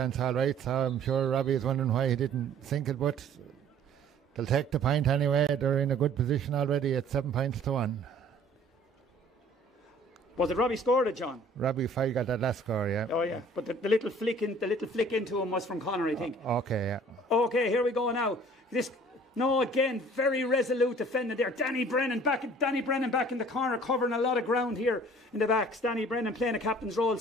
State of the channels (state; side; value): normal; both; correlation 0.52